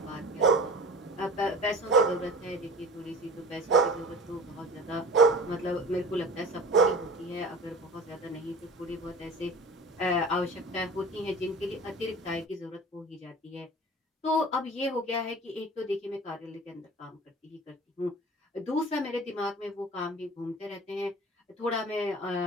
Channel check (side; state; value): both; normal; correlation 0.38